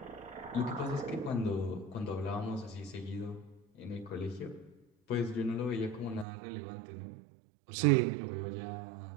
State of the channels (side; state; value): left; drops out; at 6.2 s